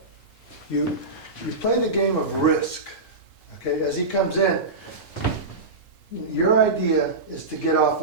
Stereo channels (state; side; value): quieter; left; 3.3 dB